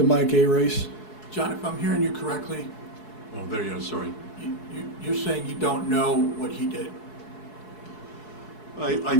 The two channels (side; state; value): right; late; 4.7 ms